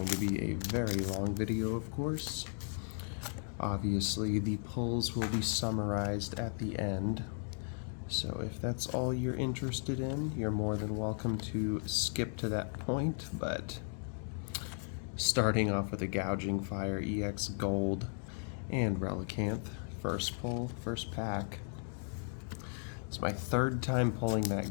to be a very long video, of course. Obviously the pulls will be summarized at the end. So if that's all you're interested in, you're more than welcome to skip to that point, but starting off with a Gouging Fire EX Gold and Relicanth, first pull, first pack. It's my third time pulling that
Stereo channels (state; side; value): silent; right; 54 dB below the other